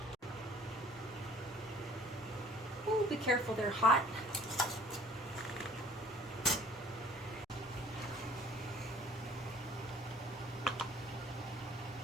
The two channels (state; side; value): normal; both; correlation 0.53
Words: Ooh, be careful, they're hot.